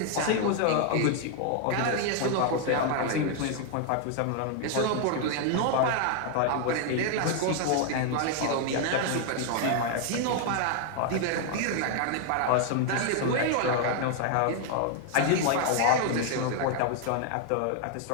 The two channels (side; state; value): both; different; correlation 0.00